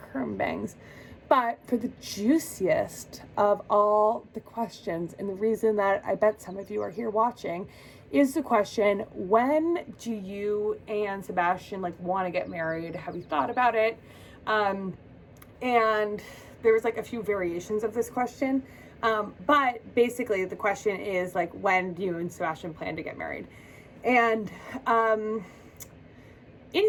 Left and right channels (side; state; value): both; identical; correlation 1.00